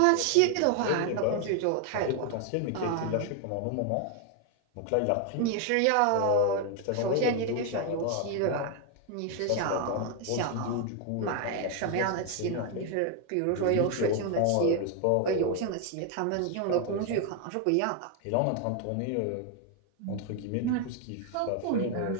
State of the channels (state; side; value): different; both; correlation 0.01